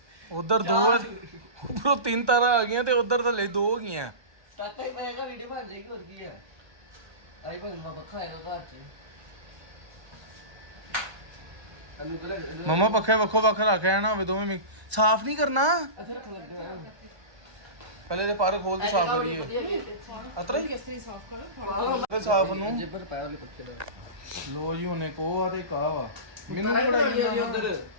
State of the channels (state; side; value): late; left; 1.2 ms